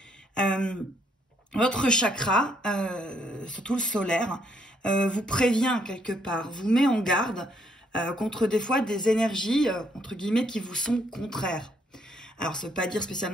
Votre chakra, surtout le solaire, vous prévient quelque part, vous met en garde contre des fois des énergies, entre guillemets, qui vous sont contraires. Alors, ça ne veut pas dire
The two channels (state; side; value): normal; both; correlation 0.71